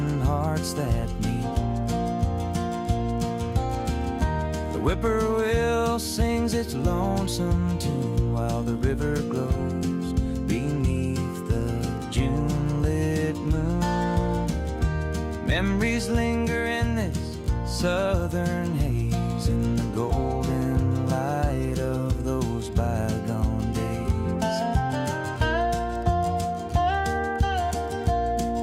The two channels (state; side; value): identical; both; correlation 1.00